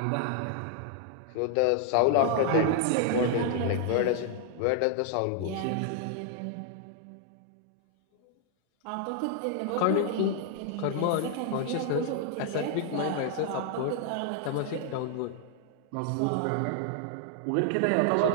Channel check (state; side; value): different; both; correlation 0.00